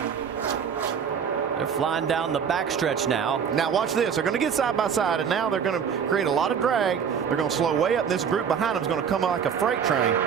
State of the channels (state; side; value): quieter; left; 7.3 dB